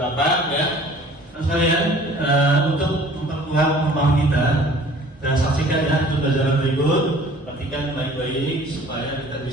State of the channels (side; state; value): both; normal; correlation 0.50